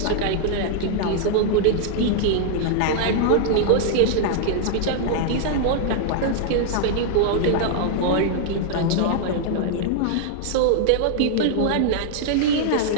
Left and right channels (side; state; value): both; different; correlation -0.01